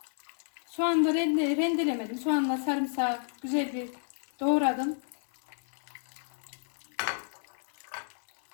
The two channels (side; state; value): right; silent; digital silence